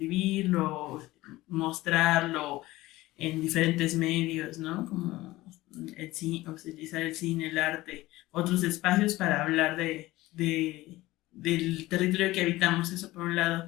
mostrarlo en diferentes medios, ¿no? Como el cine, utilizar el cine, el arte, otros espacios para hablar del territorio que habitamos, eso por un lado.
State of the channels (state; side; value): quieter; right; 18.1 dB